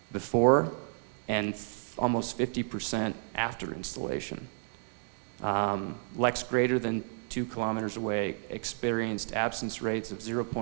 before and almost 50% after installation. Lex greater than 2 kilometers away experienced absence rates of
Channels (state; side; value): silent; left; 57 dB below the other